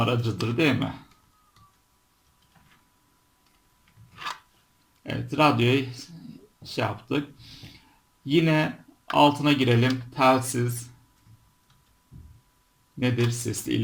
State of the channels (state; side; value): identical; both; correlation 1.00